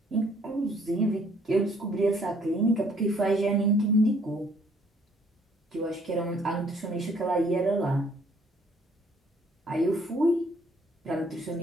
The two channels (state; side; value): normal; both; correlation 0.62